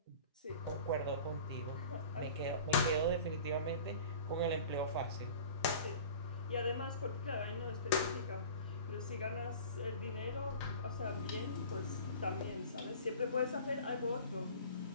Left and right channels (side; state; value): both; inverted; correlation -0.41